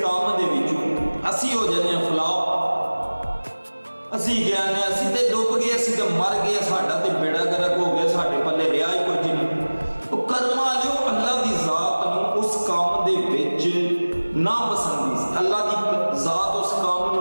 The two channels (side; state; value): both; inverted; correlation -1.00